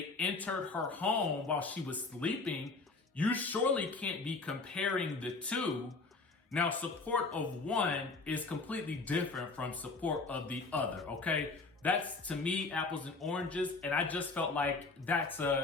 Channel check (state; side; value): quieter; right; 3.8 dB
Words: entered her home while she was sleeping. You surely can't be comparing the two. Now, support of one is completely different from support of the other, okay? That's, to me, apples and oranges, and I just felt like